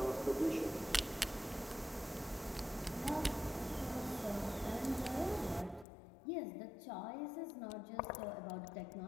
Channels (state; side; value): drops out; right; at 5.9 s